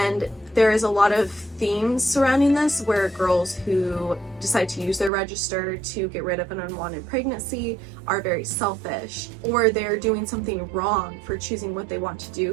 there is a lot of themes surrounding this where girls who decide to use their register to get rid of an unwanted pregnancy are very selfish, or they're doing something wrong for choosing what they want to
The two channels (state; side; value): drops out; left; at 5.1 s